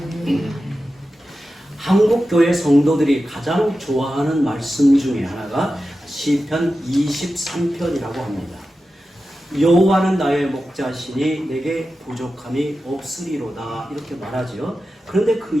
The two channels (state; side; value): normal; both; correlation 0.92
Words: 한국교회 성도들이 가장 좋아하는 말씀 중에 하나가 시편 23편이라고 합니다. 여호와는 나의 목자시니 내게 부족함이 없으리로다, 이렇게 말하죠. 그런데 그